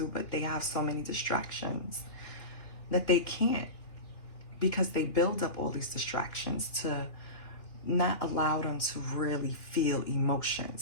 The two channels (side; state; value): right; late; 2.8 ms